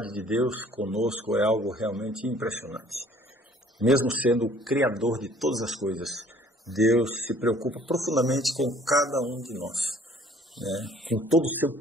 de Deus conosco é algo realmente impressionante. Mesmo sendo o Criador de todas as coisas, Deus se preocupa profundamente com cada um de nós. Com todo o seu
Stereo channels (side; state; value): both; normal; correlation 0.55